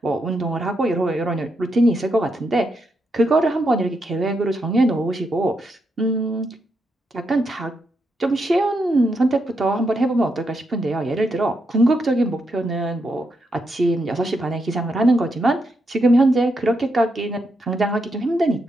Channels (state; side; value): normal; both; correlation 0.82